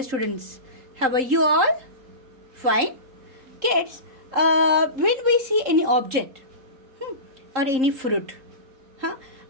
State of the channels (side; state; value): left; late; 3.7 ms